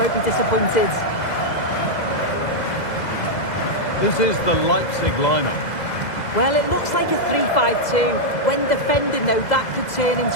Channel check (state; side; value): late; right; 2.0 ms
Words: be disappointed. This is the Leipzig lineup. Well, it looks like a 3-5-2. When defending, though, that could turn